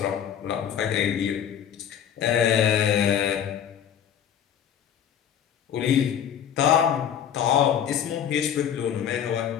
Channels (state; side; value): quieter; right; 9.1 dB